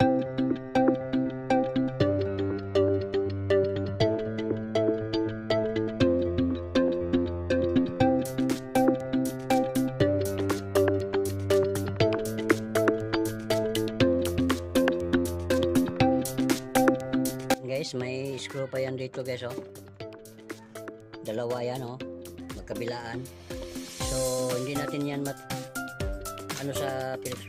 Guys, may screw pa yan dito guys dalawa yan magkabilaan. So hindi natin yan sa Phillips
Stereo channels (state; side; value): identical; both; correlation 1.00